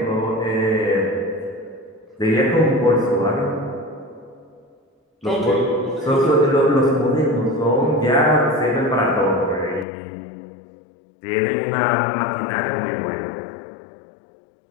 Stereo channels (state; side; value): drops out; right; at 9.9 s